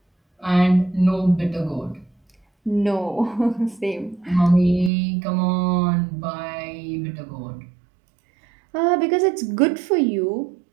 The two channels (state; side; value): drops out; left; at 4.9 s